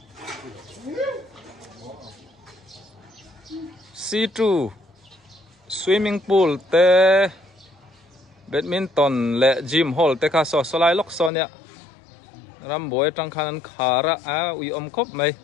C2 swimming pool te badminton le gym hall te kha so solai lok sonia ram boy tang khan khara ui om khop mai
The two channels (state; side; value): drops out; right; at 11.3 s